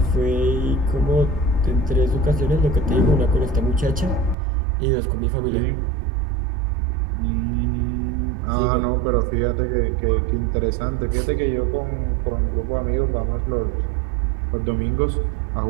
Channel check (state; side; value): drops out; left; at 4.4 s